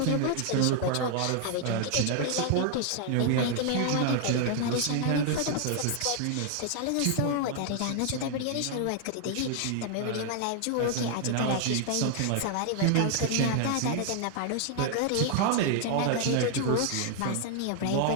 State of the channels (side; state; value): both; different; correlation 0.00